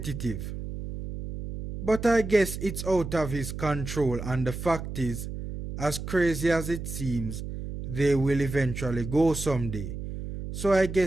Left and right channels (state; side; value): noise; right; hum, 7 dB below the sound